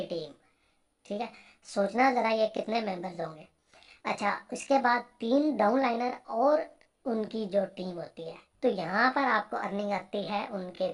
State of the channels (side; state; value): both; identical; correlation 1.00